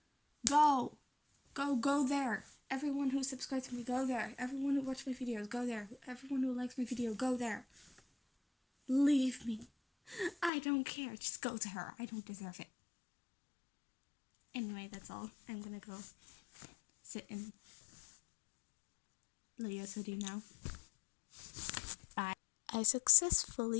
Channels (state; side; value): drops out; right; at 10.5 s